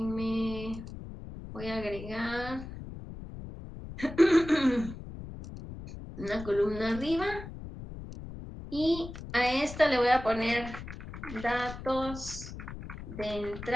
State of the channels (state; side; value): noise; left; rumble, 11 dB below the sound